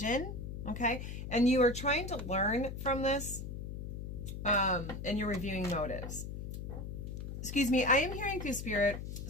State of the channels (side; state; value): left; noise; hum, 7 dB below the sound